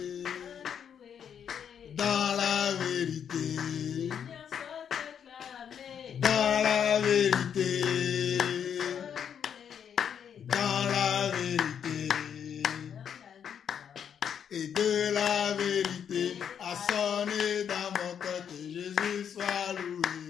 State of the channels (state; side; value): quieter; right; 8.2 dB